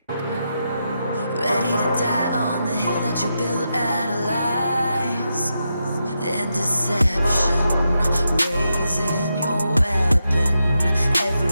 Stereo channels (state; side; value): inverted; both; correlation -0.86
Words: Ready to die on the hill that you built out of lies and deception, raising your weapon.